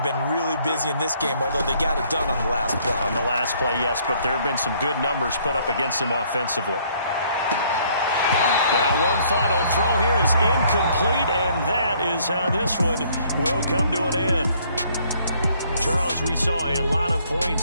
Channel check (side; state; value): both; inverted; correlation -0.64